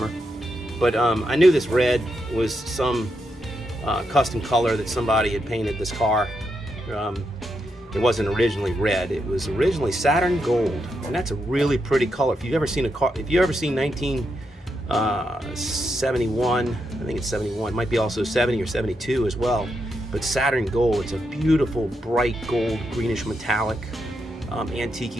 But I knew this red was some custom color that somebody had painted this car. It wasn't originally red. It was originally Saturn Gold, and that's a really pretty color. If you've ever seen a car, if you ever seen 1971, I think it's 71, might be also 70 or 72 as well. But Saturn Gold, it's a beautiful, bright gold, greenish metallic,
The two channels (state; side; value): normal; both; correlation 0.83